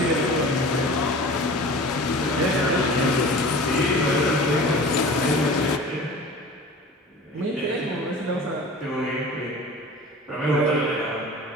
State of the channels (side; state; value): both; normal; correlation 0.39